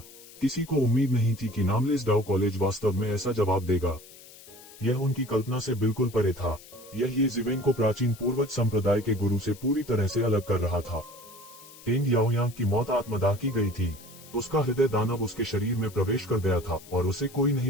किसी को उम्मीद नहीं थी कि नामलेस डाउ कॉलेज वास्तव में ऐसा जवाब देगा। यह उनकी कल्पना से बिल्कुल परे था। यह ये जिवेन को प्राचीन पूर्वज संप्रदाय के गुरु से पूरी तरह से अलग कर रहा था। टेंग याओयांग की मौत आत्मदाह की गई थी। उसका हृदय दानव उसके शरीर में प्रवेश कर गया था और उसे कोई नहीं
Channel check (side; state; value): left; noise; hiss, 20 dB below the sound